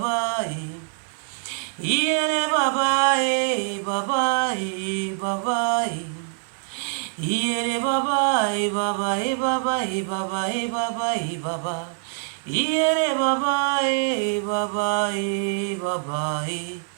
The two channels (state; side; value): silent; left; 59 dB below the other